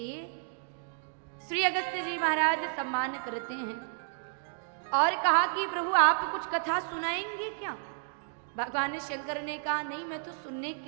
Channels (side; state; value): left; silent; digital silence